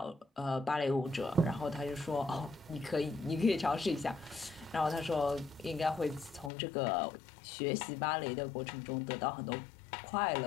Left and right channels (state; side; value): drops out; right; at 6.5 s